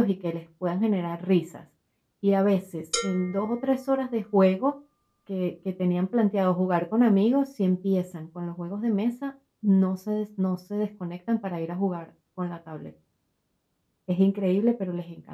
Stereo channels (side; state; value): both; identical; correlation 1.00